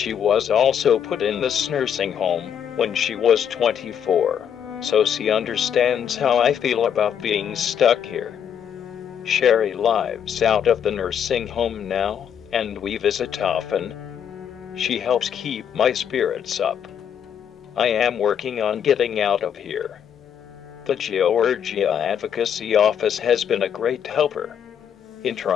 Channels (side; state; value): right; quieter; 8.6 dB